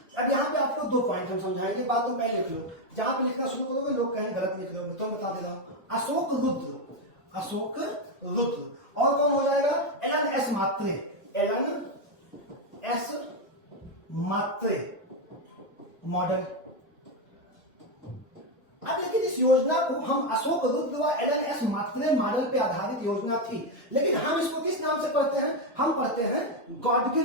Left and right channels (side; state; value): both; normal; correlation 0.07